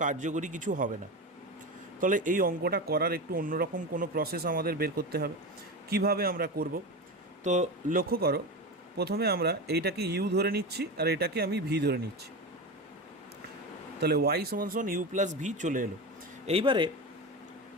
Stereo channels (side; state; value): both; normal; correlation 0.22